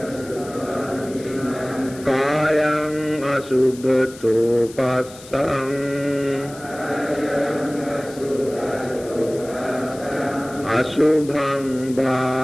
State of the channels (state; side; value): noise; left; hiss, 19 dB below the sound